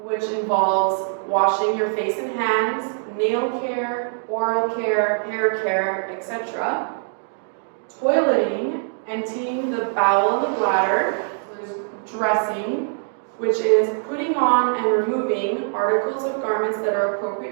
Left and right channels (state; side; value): silent; left; digital silence